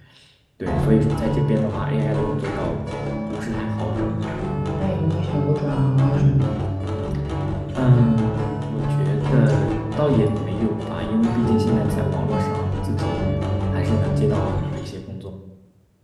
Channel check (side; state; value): both; identical; correlation 1.00